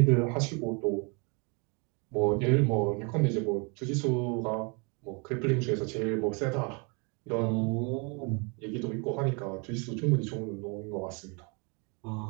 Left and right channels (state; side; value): quieter; left; 33.0 dB